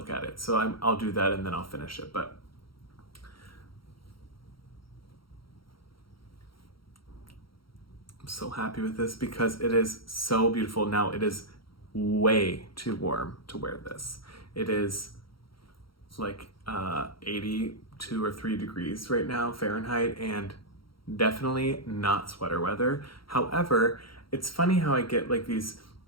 at it. So I'll do that and then I'll finish it. But I'm so happy with this because it is so beautiful. Now it is way too warm to wear this. It is like 82 or 3 degrees right now Fahrenheit, and definitely not sweater weather. However, it's funny how I get like these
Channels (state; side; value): late; right; 0.74 ms